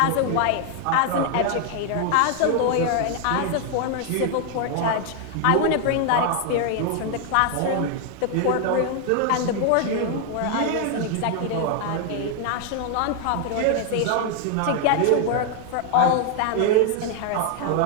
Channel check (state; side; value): different; both; correlation 0.00